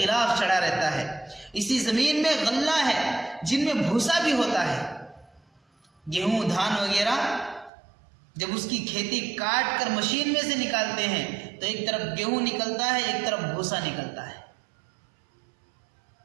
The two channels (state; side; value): drops out; left; at 7.7 s